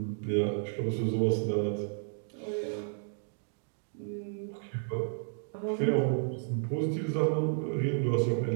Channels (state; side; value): silent; left; digital silence